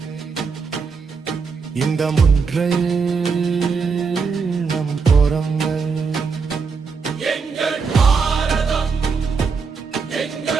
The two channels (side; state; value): left; quieter; 5.2 dB